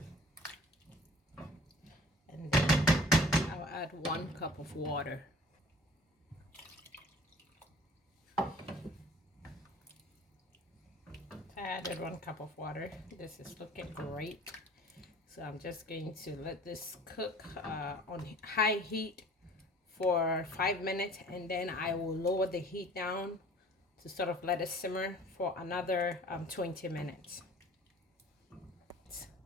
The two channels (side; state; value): both; normal; correlation 0.48